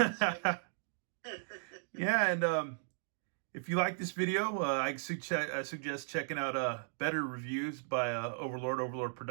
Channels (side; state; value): left; silent; digital silence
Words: you. Yeah, and if you like this video, I suggest checking out better reviews by Overlord